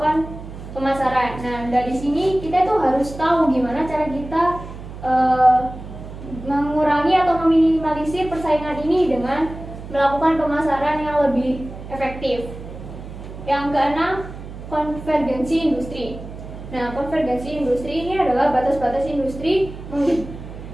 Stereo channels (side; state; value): right; noise; hum, 12 dB below the sound